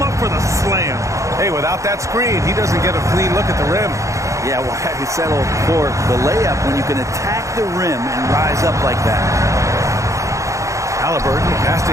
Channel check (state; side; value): late; left; 0.15 ms